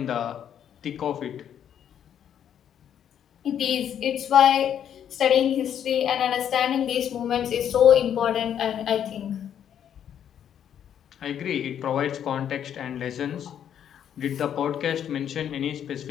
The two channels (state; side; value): quieter; right; 9.4 dB